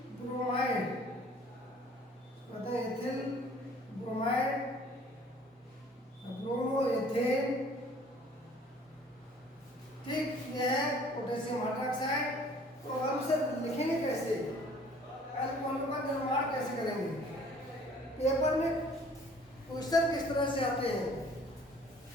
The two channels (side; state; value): both; normal; correlation 0.54